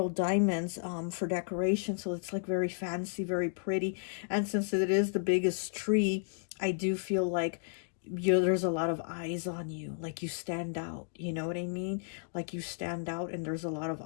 diamonds for decoration. So it's like very fancy, very pretty. And since it is the biggest tree, I do feel like there's a lot of eyes on you, like you stand out, you know what I mean? Like you stand out and there's a lot of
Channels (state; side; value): silent; right; digital silence